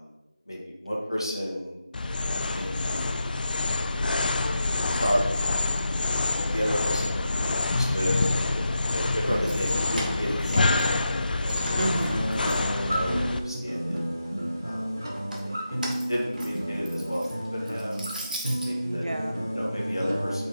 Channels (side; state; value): both; inverted; correlation -0.87